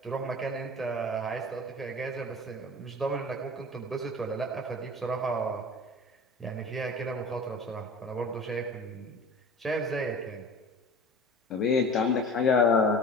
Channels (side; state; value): both; normal; correlation 0.39